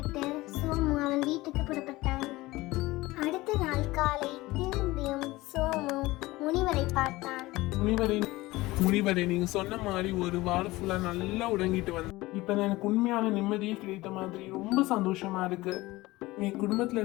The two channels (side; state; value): right; quieter; 19.6 dB